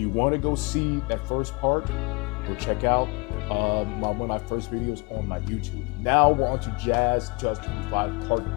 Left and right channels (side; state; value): right; quieter; 29.0 dB